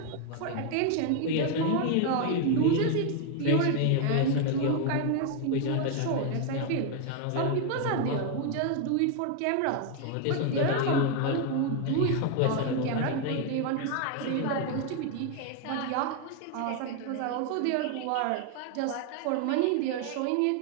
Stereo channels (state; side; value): different; both; correlation 0.01